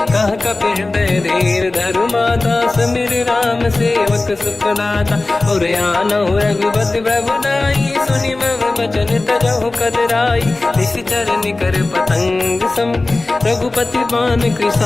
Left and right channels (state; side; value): quieter; right; 3.1 dB